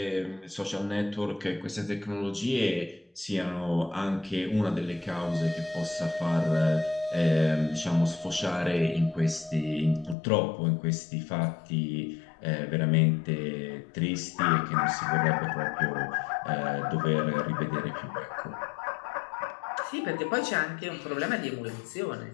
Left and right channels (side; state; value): right; drops out; at 10.2 s